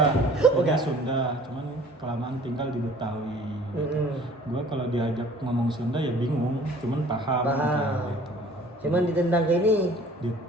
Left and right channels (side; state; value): both; normal; correlation 0.50